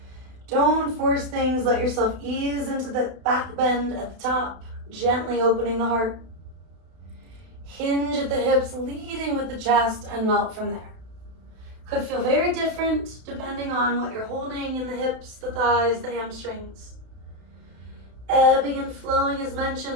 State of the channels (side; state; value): left; late; 32 ms